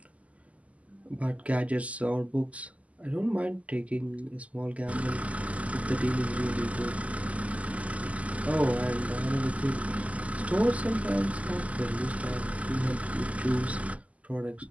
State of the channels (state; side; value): late; left; 0.069 ms